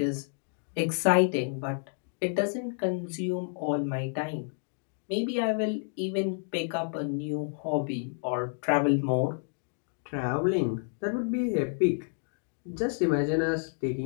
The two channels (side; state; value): right; silent; 58 dB below the other